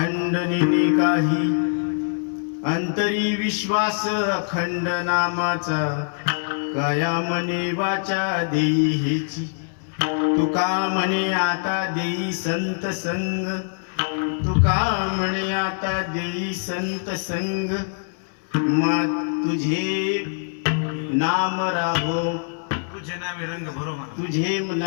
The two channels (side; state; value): right; silent; digital silence